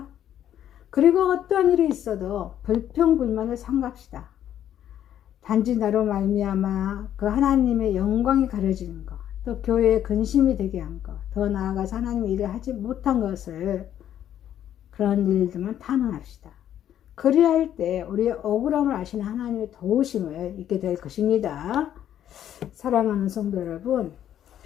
그리고 어떠한 일이 있어도 불평불만을 삼갑시다. 단지 나로 말미암아 그 하나님의 영광이 가려지는 것, 또 교회의 근심이 되게 한 것, 더 나아가서 하나님의 일을 하지 못한 것을 그런 일들만 탄원합시다. 그리할 때 우리의 억울함을 아시는 하나님의 도우심을 잊게 될 것입니다. 사랑하는 성도 여러분,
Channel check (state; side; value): quieter; right; 10.7 dB